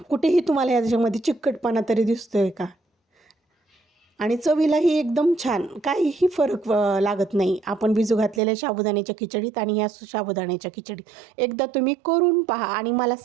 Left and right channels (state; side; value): drops out; left; at 8.4 s